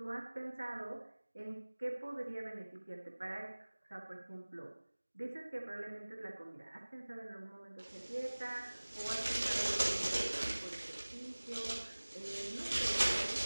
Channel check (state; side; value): inverted; both; correlation -1.00